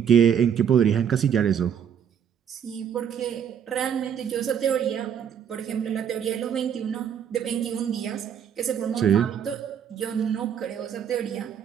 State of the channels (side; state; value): left; quieter; 8.4 dB